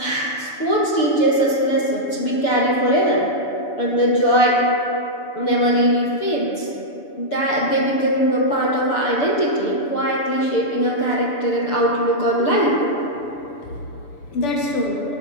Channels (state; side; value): late; right; 6.9 ms